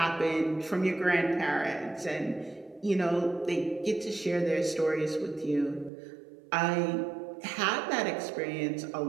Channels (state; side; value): drops out; left; at 5.9 s